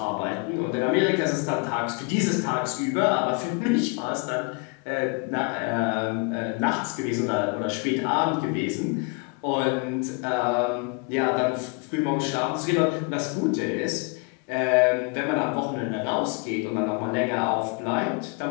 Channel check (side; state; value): right; quieter; 32.7 dB